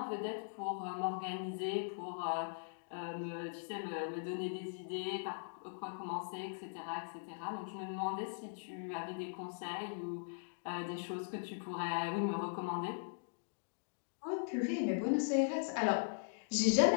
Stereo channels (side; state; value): right; silent; digital silence